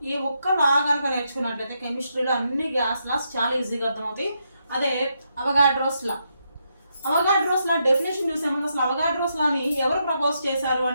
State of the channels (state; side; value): inverted; both; correlation -0.80